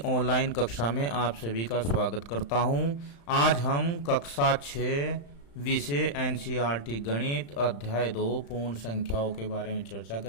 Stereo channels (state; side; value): late; right; 35 ms